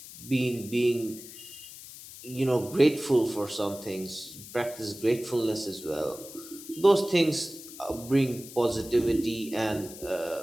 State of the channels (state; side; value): noise; left; hiss, 15 dB below the sound